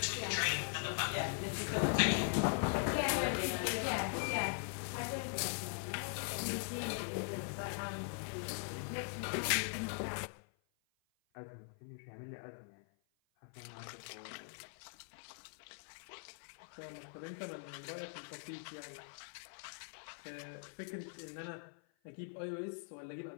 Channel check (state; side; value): silent; right; 50 dB below the other